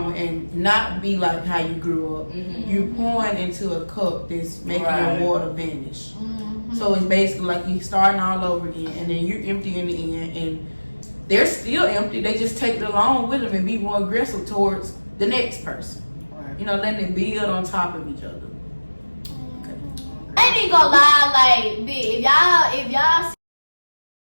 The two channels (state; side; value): inverted; both; correlation -1.00